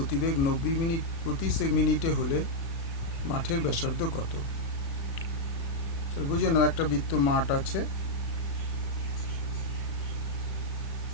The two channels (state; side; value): late; right; 36 ms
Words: 90 মিনিট প্রতি মিনিটে হলে মাঠের ব্যাসার্ধ কত? বুঝে নাও, একটা বৃত্ত মাঠ আছে,